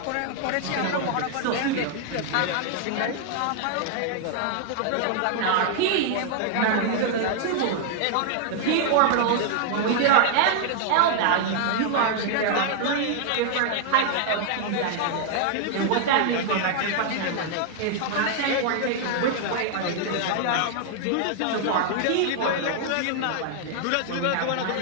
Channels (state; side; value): different; both; correlation 0.00